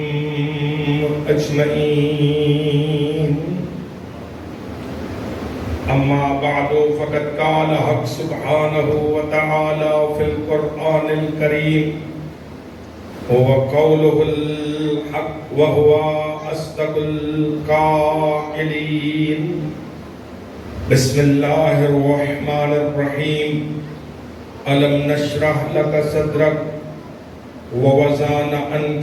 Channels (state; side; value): identical; both; correlation 1.00